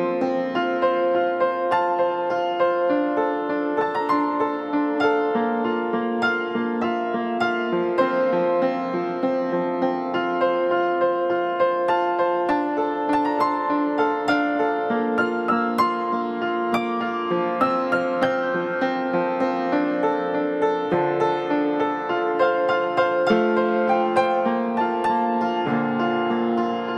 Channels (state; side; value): identical; both; correlation 1.00